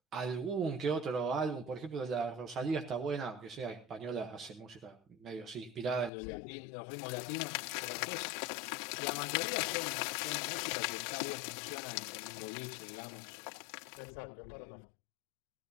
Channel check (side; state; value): right; drops out; at 6.1 s